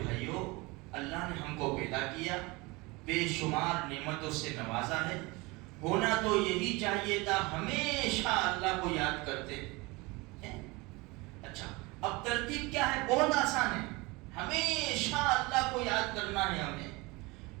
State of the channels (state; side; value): quieter; left; 24.4 dB